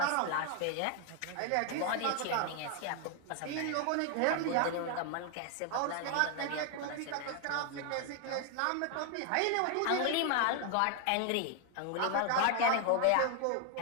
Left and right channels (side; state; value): both; different; correlation 0.00